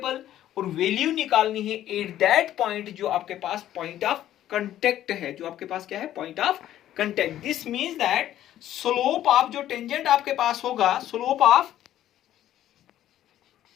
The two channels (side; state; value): right; quieter; 12.4 dB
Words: और वैल्यू निकालनी है एट दैट पॉइंट जो आपके पास पॉइंट ऑफ कांटेक्ट है, जो आपके पास क्या है, point of contact. This means that slope of जो टेंजेंट आपके पास होगा, slope